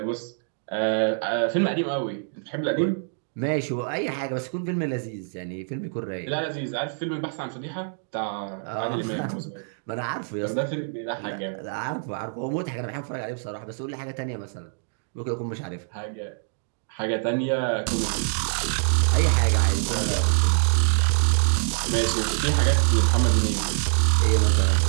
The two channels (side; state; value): left; silent; digital silence